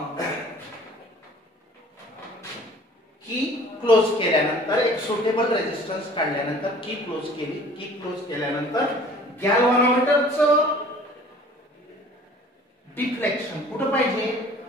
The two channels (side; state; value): both; normal; correlation 0.50